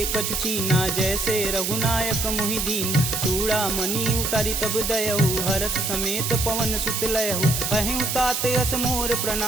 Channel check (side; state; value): right; noise; hiss, 1 dB below the sound